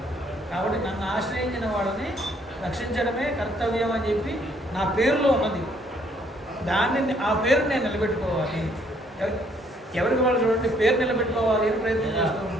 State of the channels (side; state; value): both; normal; correlation 0.65